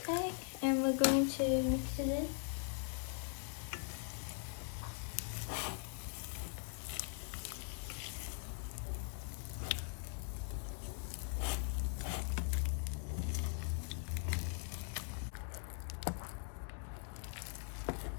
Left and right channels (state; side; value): silent; right; 50 dB below the other